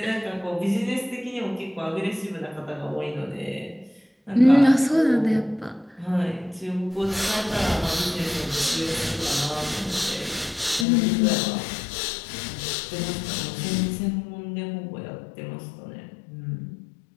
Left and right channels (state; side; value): drops out; right; at 10.9 s